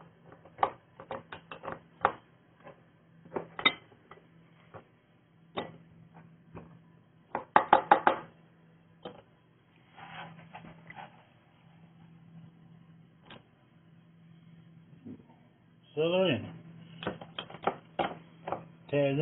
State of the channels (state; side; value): identical; both; correlation 1.00